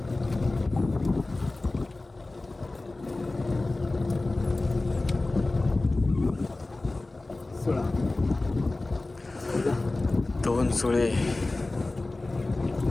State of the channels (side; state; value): right; quieter; 3.1 dB